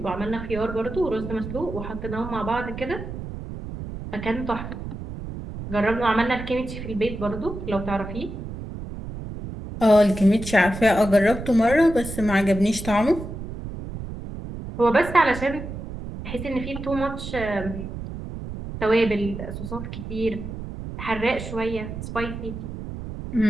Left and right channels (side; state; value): right; noise; rumble, 9 dB below the sound